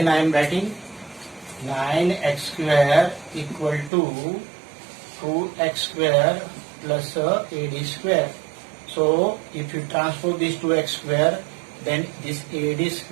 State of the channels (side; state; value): left; drops out; at 3.9 s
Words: I am writing 9x square equal to 2x square plus AD square. So if you transpose this 2x square, then this AD